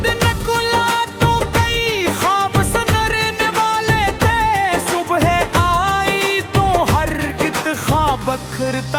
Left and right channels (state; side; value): identical; both; correlation 1.00